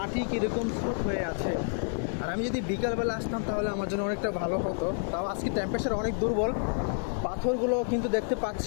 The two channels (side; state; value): right; silent; digital silence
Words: কীরকম স্রোত হয়ে আছে। আর আমি যদি বিকালবেলা আসতাম তাহলে আমার জন্য অনেকটা ভালো হতো। তাও আজকে টেম্পারেচার অনেক দুর্বল। পাথরগুলো কিন্তু দেখতে